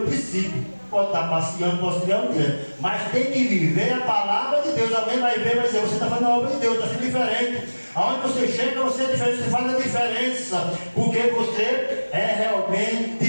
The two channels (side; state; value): both; inverted; correlation -1.00